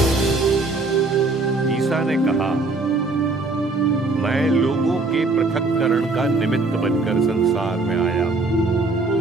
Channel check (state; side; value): quieter; left; 3.4 dB